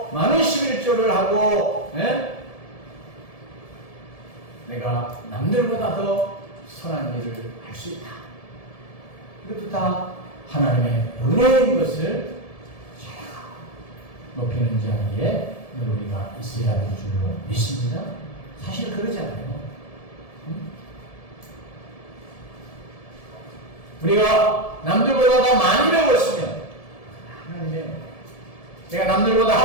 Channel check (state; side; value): late; right; 1.7 ms